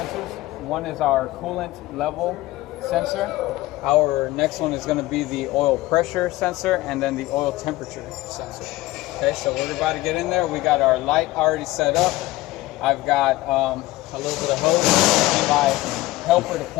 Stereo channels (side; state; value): right; quieter; 18.1 dB